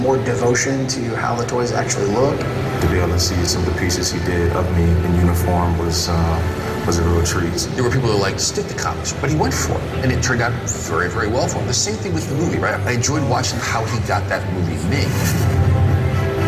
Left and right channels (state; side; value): identical; both; correlation 1.00